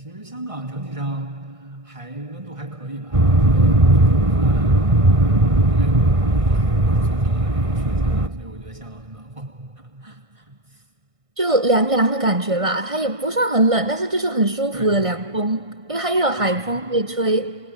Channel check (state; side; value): late; left; 1.6 ms